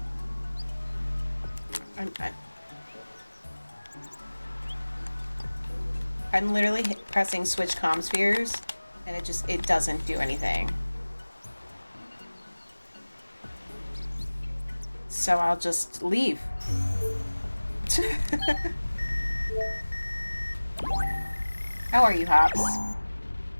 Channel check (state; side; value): inverted; both; correlation -1.00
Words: I'm literally pressing switch comm spheres, and it doesn't do anything. So I'll just leave. How are you, Hops?